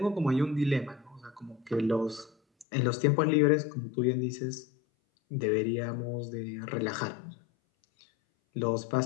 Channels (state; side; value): drops out; right; at 2.7 s